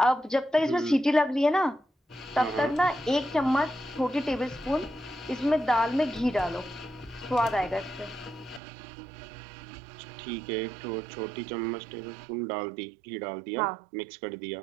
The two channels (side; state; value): left; drops out; at 8.6 s